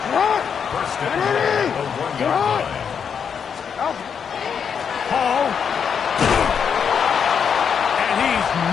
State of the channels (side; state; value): right; quieter; 7.1 dB